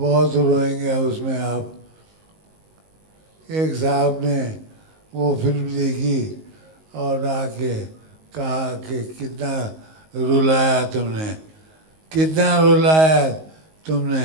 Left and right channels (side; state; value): left; late; 19 ms